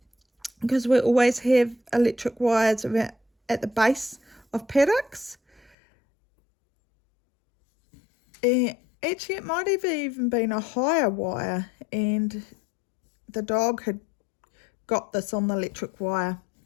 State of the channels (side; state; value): right; drops out; at 5.8 s